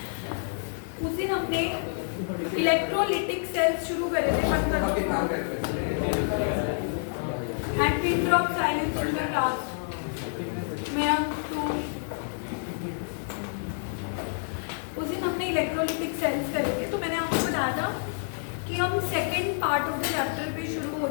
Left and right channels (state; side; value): silent; right; digital silence